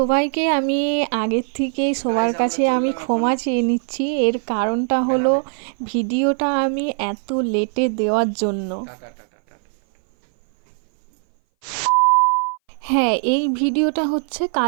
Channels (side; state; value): left; silent; 60 dB below the other